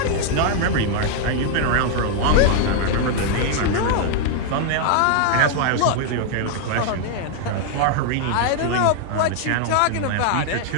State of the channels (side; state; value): both; different; correlation 0.00